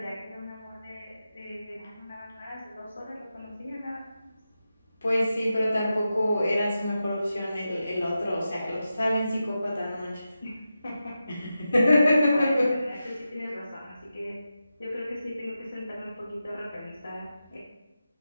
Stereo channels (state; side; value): inverted; both; correlation -0.91